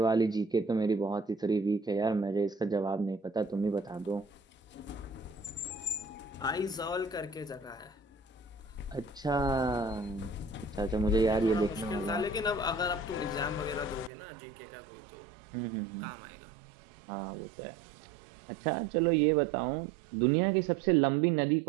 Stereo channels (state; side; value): drops out; left; at 14.1 s